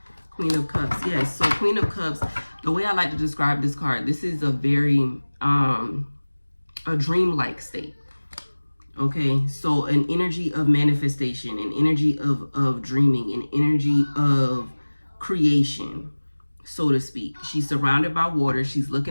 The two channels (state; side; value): inverted; both; correlation -1.00